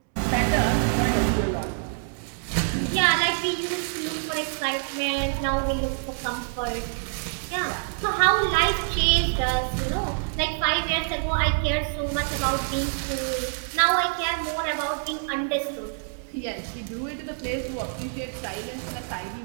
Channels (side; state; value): left; silent; digital silence